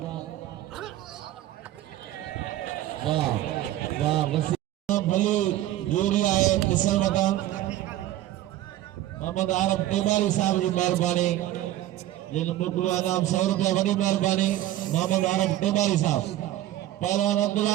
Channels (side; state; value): left; quieter; 14.1 dB